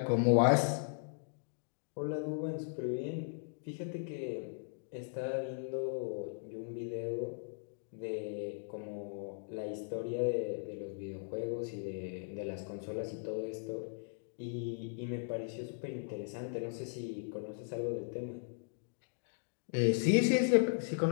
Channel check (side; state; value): right; silent; digital silence